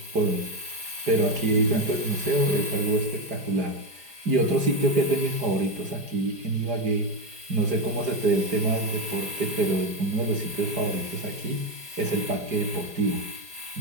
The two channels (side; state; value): left; late; 4.9 ms